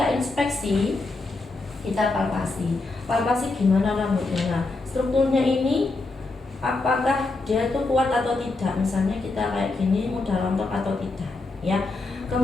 inspeksi, kita palpasi gimana rambutnya. Nah, strukturnya ini apakah dia itu kuat atau tidak, misalnya kita kayak gini mudah rontok atau tidak ya.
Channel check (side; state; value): right; quieter; 3.4 dB